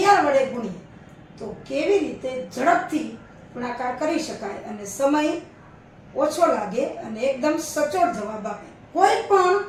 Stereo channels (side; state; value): both; identical; correlation 1.00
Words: વડે ગુણીએ તો કેવી રીતે ઝડપથી ગુણાકાર કરી શકાય અને સમય ઓછો લાગે અને એકદમ સચોટ જવાબ આપે. કોઈ પણ